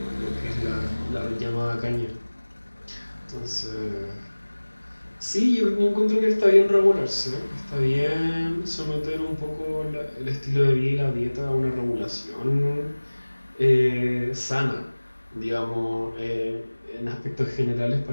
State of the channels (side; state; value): both; inverted; correlation -1.00